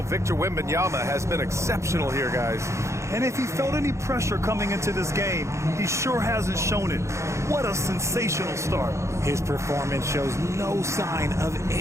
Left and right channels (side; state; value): left; late; 0.14 ms